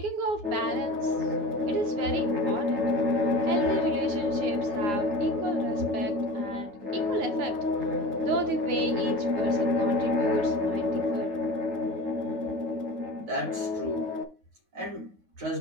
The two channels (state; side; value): late; left; 9.7 ms